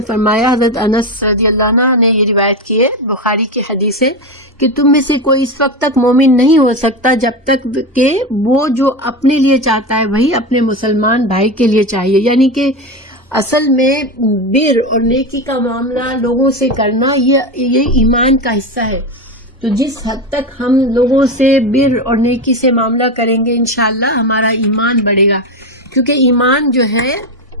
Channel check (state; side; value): normal; both; correlation 0.18